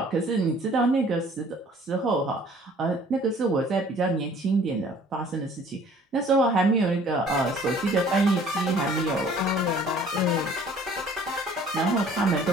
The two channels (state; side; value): normal; both; correlation 0.53